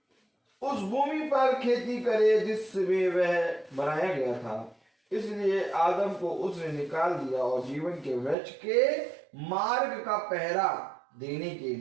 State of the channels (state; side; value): drops out; left; at 8.3 s